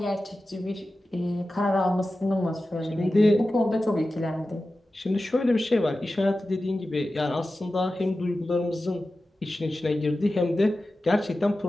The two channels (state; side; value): normal; both; correlation 0.94